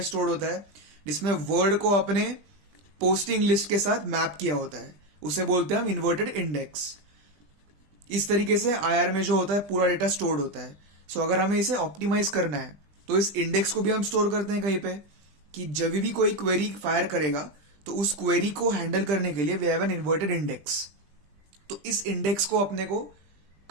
stored होता है, जिसमें word को अपने posting list के साथ map किया होता है, उसे बोलते हैं हम इन्वर्टेड इंडेक्स. इस तरीके से आईआर में जो होता है पूरा डेटा स्टोर्ड होता है. सो अगर हमें इसे ऑप्टिमाइज करना है तो इस इंडेक्स को भी हम स्टोर करते हैं कहीं पे कि जब भी कोई क्वेरी फायर करेगा तो उस क्वेरी को हैंडल करने के लिए we have an inverted index. तो इस इंडेक्स को अपने को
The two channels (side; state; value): left; late; 20 ms